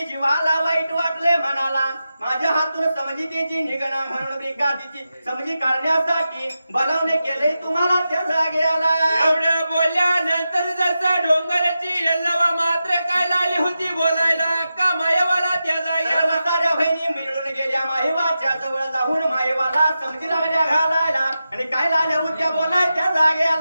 जीवाला वाईट वाटले म्हणाला माझ्या हातून समजितीची निगणा म्हणून ब्रिकातीची समजी काढण्यासाठी बनवणे केले तुम्हाला त्या जागेला एवढ्या बोलल्यानंतर जसा डोंगराची यल्लवा मात्र काय लागली होती बोलायला का मायवाला त्या जागेला साऱ्या बहिणी मिळून गेल्या माहेवाच्या जवळ जाऊन माहेवाला समजी लागल्या घालायला आणि काय लागल्या होत्या बोलाय त्या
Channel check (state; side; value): inverted; both; correlation -0.91